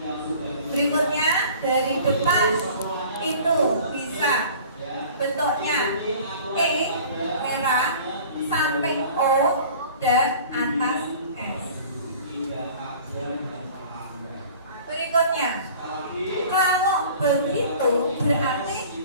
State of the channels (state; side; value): inverted; both; correlation -0.46